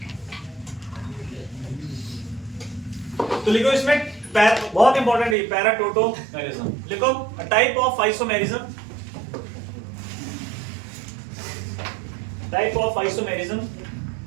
तो लिखो इसमें बहुत इंपॉर्टेंट है पैराटोटोमेरिज्म। लिखो type of isomerism, type of isomerism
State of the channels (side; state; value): left; drops out; at 5.4 s